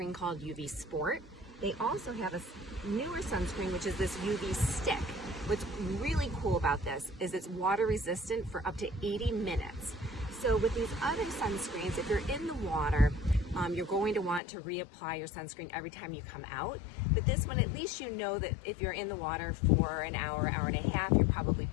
called UV Sport. They also have a newer sunscreen, which is this UV stick. What's really cool about this is it's water resistant for up to 80 minutes. So with these other sunscreens, if you're in the water, you're going to want to reapply your sunscreen every time you come out. But this one, at least you know that if you're in the water for an hour, hour and a half, you're probably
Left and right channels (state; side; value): drops out; right; at 14.4 s